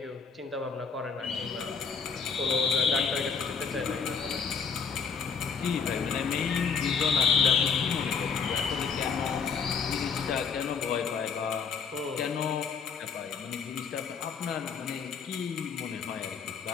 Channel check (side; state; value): right; quieter; 5.9 dB